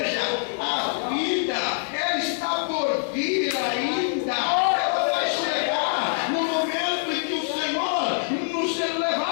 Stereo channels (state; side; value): silent; right; digital silence